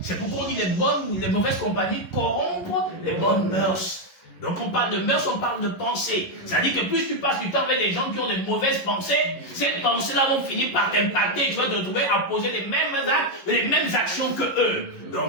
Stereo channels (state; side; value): late; right; 11 ms